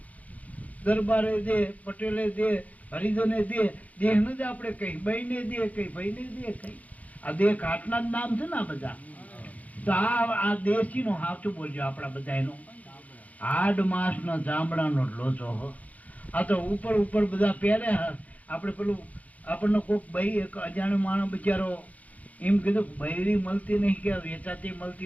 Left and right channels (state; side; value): late; right; 0.072 ms